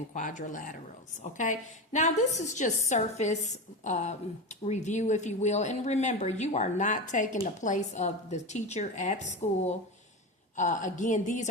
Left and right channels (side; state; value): both; normal; correlation 0.21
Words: quadrilaterals. Okay, now this is just surface review, if you will. And remember, you are not taking the place of the teacher at school. Again, these